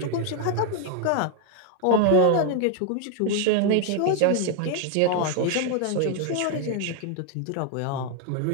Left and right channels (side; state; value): both; different; correlation 0.00